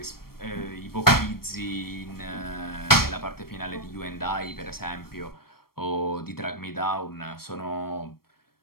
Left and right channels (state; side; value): late; right; 0.94 ms